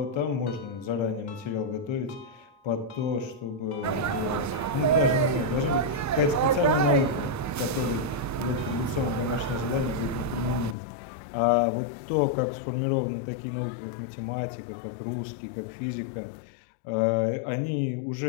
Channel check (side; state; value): right; drops out; at 10.8 s